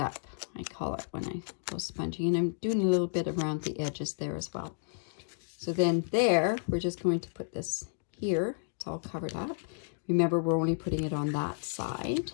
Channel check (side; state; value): right; silent; digital silence